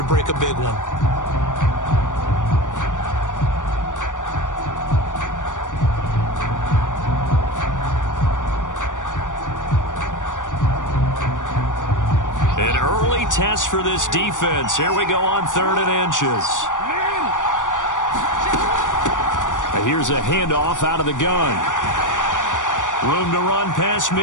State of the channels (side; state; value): right; late; 0.87 ms